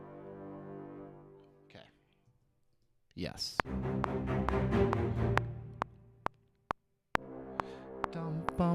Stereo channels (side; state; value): both; identical; correlation 1.00